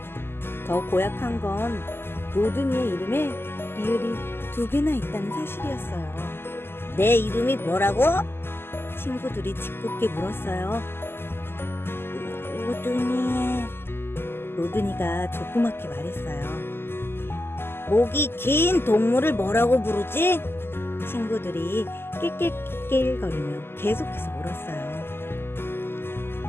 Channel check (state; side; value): late; right; 0.11 ms